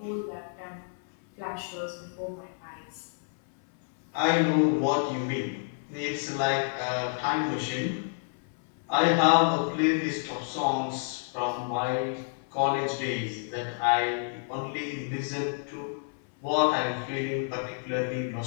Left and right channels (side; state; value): right; silent; 58 dB below the other